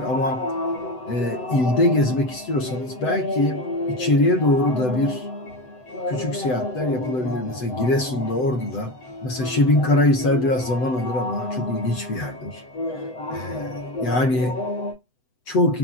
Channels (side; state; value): right; late; 7.9 ms